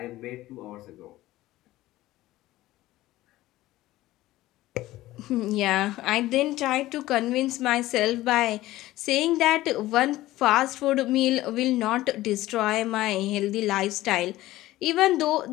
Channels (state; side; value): quieter; right; 16.5 dB